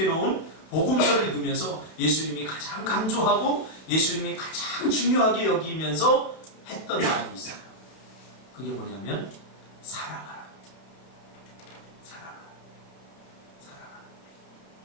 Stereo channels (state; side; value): late; right; 31 ms